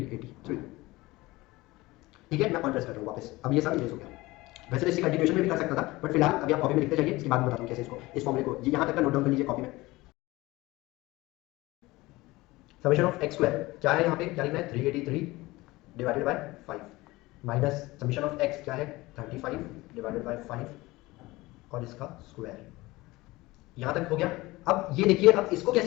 ठीक है, मैं ऑन प्रेस कर रहा हूँ वापस, अब ये सब इरेज हो गया। वैसे तो इसी कंटिन्यूएशन में भी कर सकता था, बट फिलहाल अभी आप कॉपी में लिखते जाइए, इसके बाद में बताता हूँ कैसे इसको, इस फॉर्मूले को ये यहाँ तक का नोट डाउन कर लीजिए कॉपी में। समेशन ऑफ एक्स स्क्वायर क्या है, यहाँ पे क्या लिखना है 383 divided by 5 minus summation of x क्या है 35 डिवाइडेड बाय 5 और इसका स्क्वायर, यहाँ तक हो गया। अब ये देखिए, अब इसको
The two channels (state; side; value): quieter; right; 20.3 dB